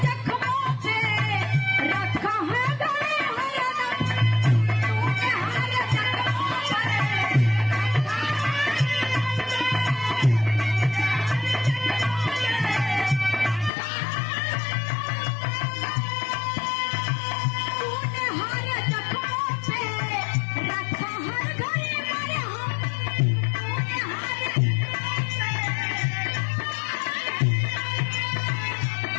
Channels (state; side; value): drops out; right; at 13.7 s